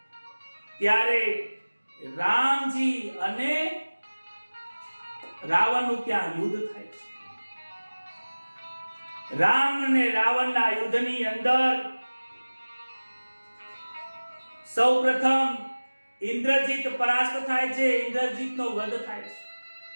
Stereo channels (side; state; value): both; inverted; correlation -1.00